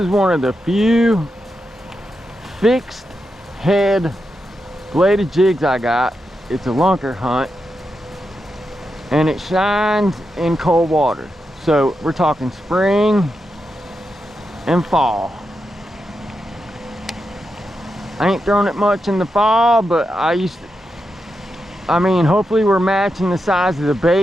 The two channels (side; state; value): both; normal; correlation 0.87